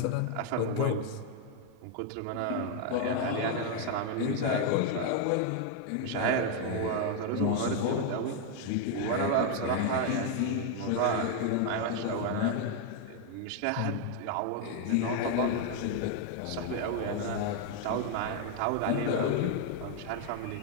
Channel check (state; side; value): different; both; correlation 0.01